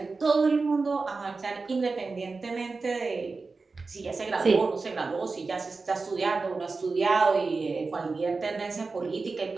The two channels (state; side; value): quieter; left; 4.1 dB